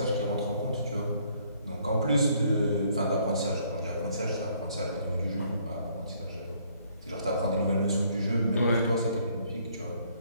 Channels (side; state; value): both; inverted; correlation -0.65